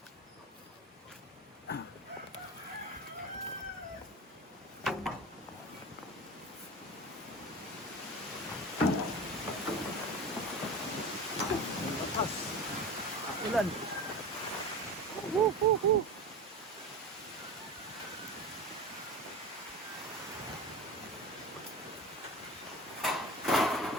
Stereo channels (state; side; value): normal; both; correlation 0.29